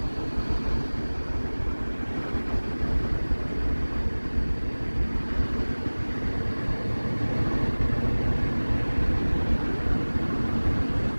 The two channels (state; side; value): inverted; both; correlation -1.00